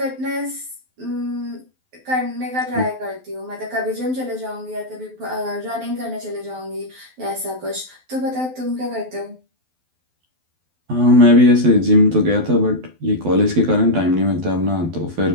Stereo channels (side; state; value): left; late; 12 ms